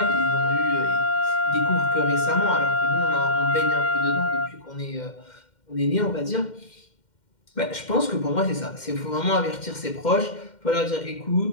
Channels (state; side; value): late; right; 2.1 ms